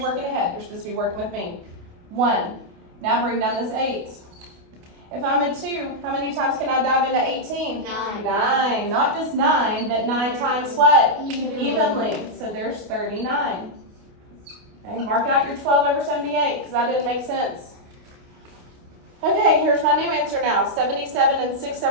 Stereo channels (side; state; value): left; late; 29 ms